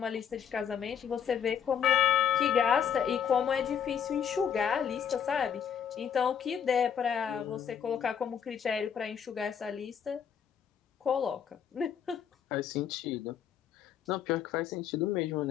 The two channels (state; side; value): quieter; right; 8.1 dB